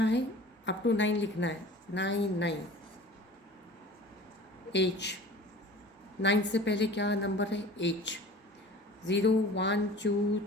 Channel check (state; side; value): normal; both; correlation 0.42